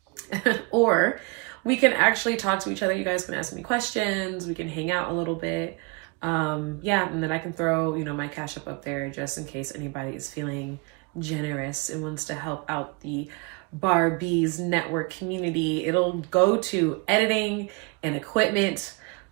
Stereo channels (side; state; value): left; quieter; 30.0 dB